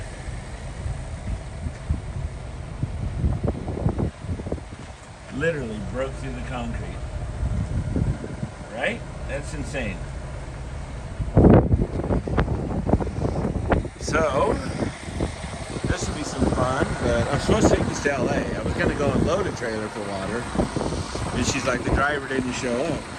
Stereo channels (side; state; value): both; identical; correlation 1.00